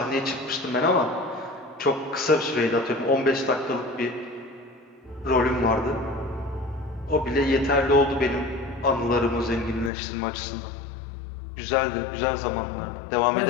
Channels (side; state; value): right; drops out; at 9.9 s